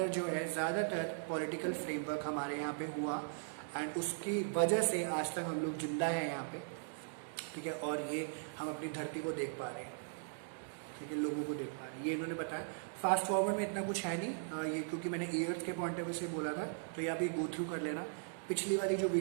जो है ज़्यादातर पॉलिटिकल फ्रेमवर्क हमारे यहाँ पे हुआ, एंड उसकी वजह से आज तक हम लोग जिंदा हैं यहाँ पे, ठीक है। और ये हम अपनी धरती को देख पा रहे हैं, ठीक है, लोगों को देख पा रहे हैं, ये इन्होंने बताया। फास्ट फॉरवर्ड में इतना कुछ है नहीं, ये क्योंकि मैंने ईयर्स के पॉइंट ऑफ व्यू से बोला था, तो ये आप ये गो थ्रू कर लेना। पिछली वाली जो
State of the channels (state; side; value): silent; left; digital silence